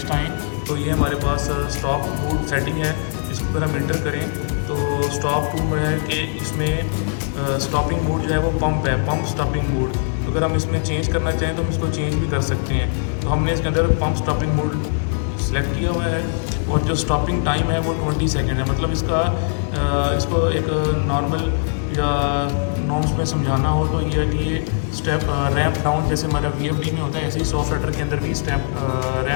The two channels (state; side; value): silent; right; 59 dB below the other